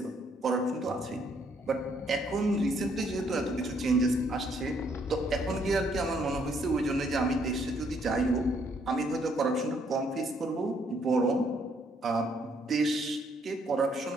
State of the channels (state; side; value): normal; both; correlation 0.69